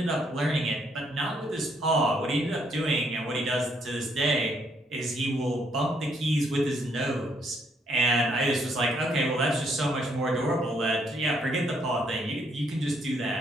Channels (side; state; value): both; normal; correlation 0.71